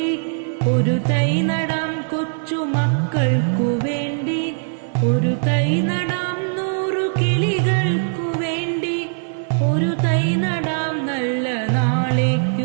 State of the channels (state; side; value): silent; left; 58 dB below the other